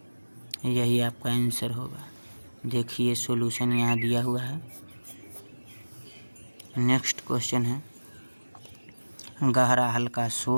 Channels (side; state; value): both; inverted; correlation -1.00